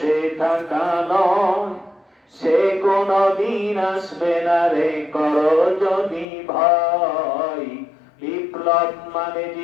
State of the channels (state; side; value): drops out; right; at 6.2 s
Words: থাকা নয়, সে কোনদিন আসবে না রে করো যদি ভয়। বিপ্লব মানে